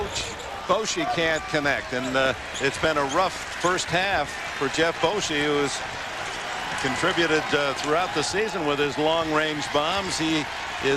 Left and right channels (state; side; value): identical; both; correlation 1.00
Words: Boshi can't connect, and it's been a rough first half for Jeff Boshi, who has contributed throughout the season with his long-range bombs. He